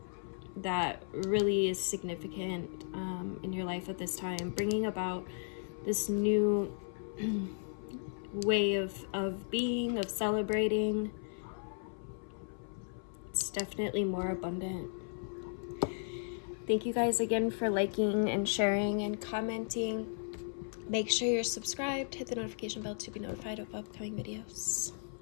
that really is significant in your life at this time, bringing about this new way of being, of celebrating. It's definitely more abundant. Thank you guys again for liking and sharing and commenting. Make sure you're subscribed, hit the notification bell to be notified of upcoming videos.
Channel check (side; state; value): right; silent; 54 dB below the other